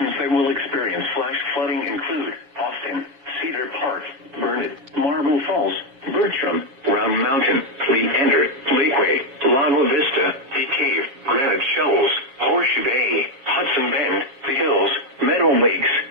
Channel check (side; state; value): left; late; 7.2 ms